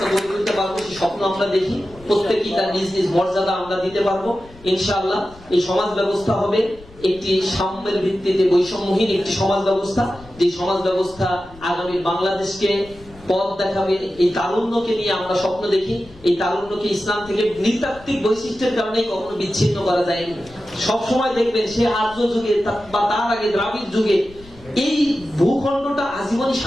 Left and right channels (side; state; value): left; noise; rumble, 22 dB below the sound